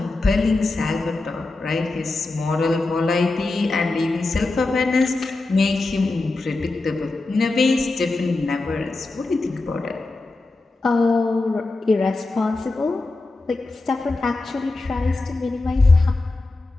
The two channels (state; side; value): quieter; right; 3.2 dB